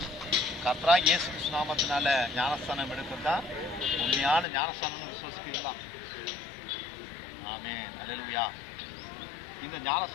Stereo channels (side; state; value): right; drops out; at 4.5 s